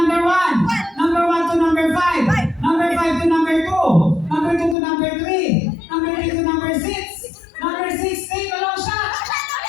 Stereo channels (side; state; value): right; drops out; at 4.8 s